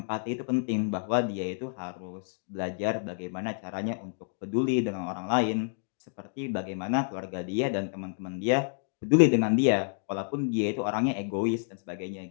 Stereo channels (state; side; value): silent; right; digital silence